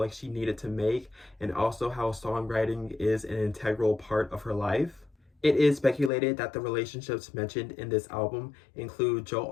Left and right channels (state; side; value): drops out; right; at 6.1 s